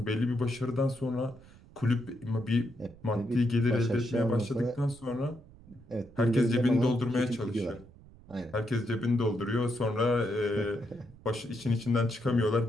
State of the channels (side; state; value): right; noise; rumble, 22 dB below the sound